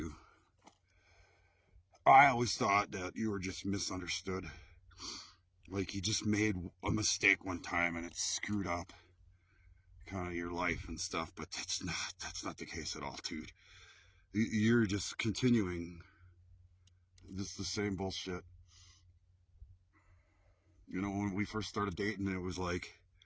I always thought that you were just misunderstood. Like you just made a mistake one time and it screwed up kind of your life and stuff, but that's not the case at all, dude. You're just continuing just the same bullshit. You know, when we first started dating, it was like,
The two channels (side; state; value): both; identical; correlation 1.00